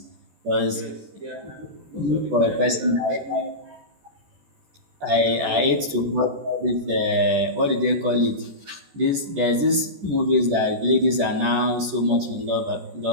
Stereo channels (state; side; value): late; left; 14 ms